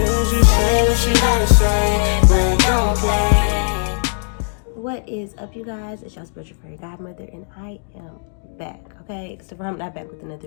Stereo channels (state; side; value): silent; right; digital silence